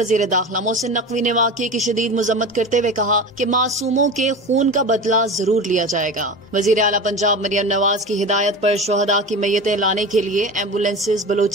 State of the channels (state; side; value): normal; both; correlation 0.30